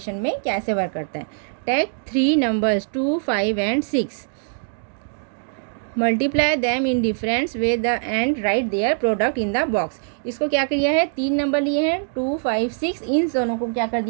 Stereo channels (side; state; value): left; silent; digital silence